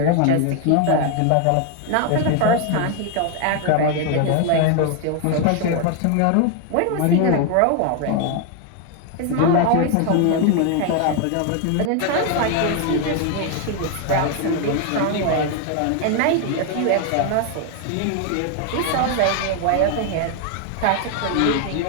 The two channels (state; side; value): different; both; correlation 0.01